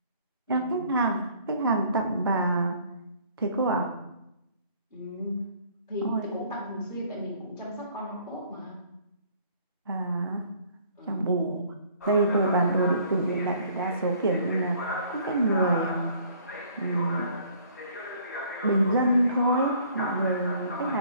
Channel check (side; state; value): both; inverted; correlation -0.58